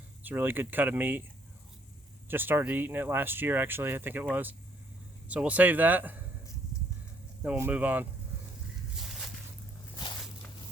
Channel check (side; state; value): both; normal; correlation 0.67